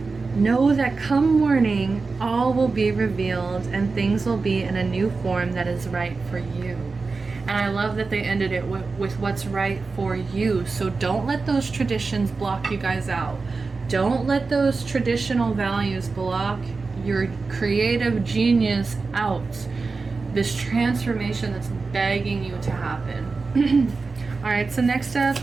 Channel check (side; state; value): left; quieter; 4.1 dB